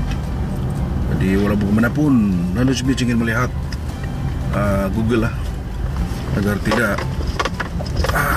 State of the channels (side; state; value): both; identical; correlation 1.00